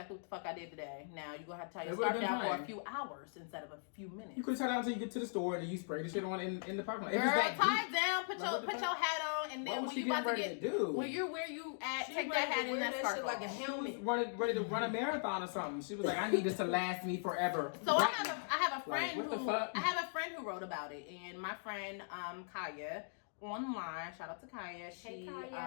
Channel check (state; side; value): silent; right; digital silence